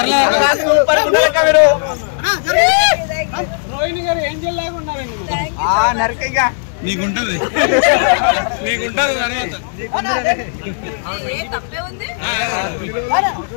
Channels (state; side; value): silent; right; digital silence